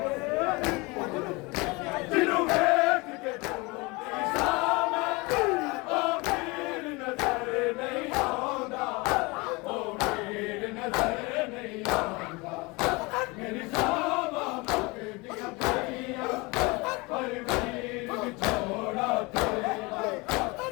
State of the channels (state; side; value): quieter; right; 25.6 dB